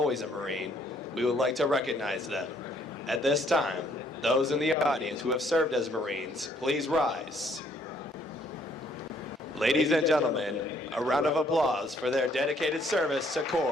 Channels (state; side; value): normal; both; correlation 0.65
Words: a Marine, we would like to recognize them. At this time, those in the audience who have served as Marines, please rise. Ladies and gentlemen, a round of applause for their dedicated service to